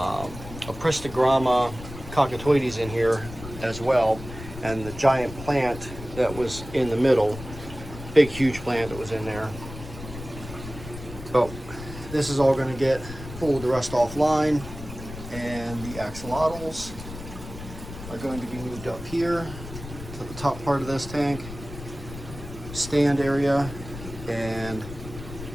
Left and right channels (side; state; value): left; noise; rumble, 12 dB below the sound